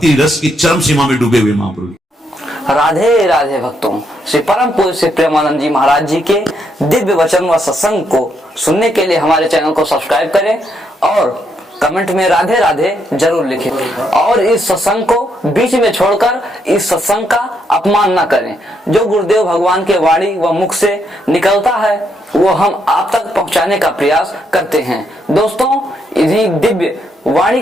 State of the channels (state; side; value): normal; both; correlation 0.76